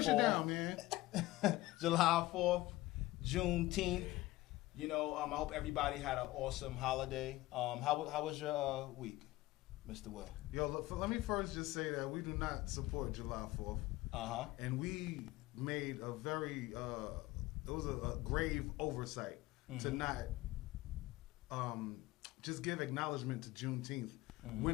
shit down, man. July 4th, Juneteenth. You know, I hope everybody had an awesome holiday. How was your week, Mr. Will? Yo, look, let me first just say that we do not support July 4th. And we made a very, it was a grave oversight to not just give acknowledgement to Juneteenth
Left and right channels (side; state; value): right; quieter; 18.3 dB